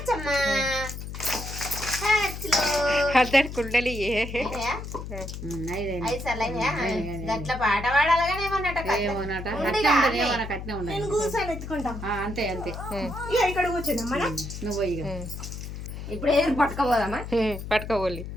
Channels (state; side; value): noise; left; hum, 8 dB below the sound